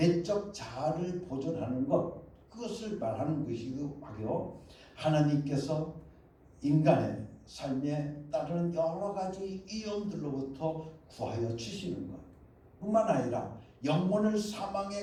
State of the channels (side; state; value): both; identical; correlation 1.00